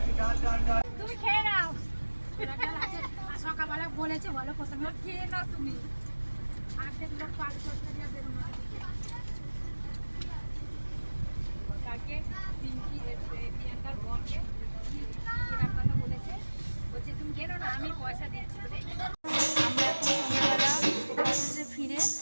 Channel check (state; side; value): inverted; both; correlation -1.00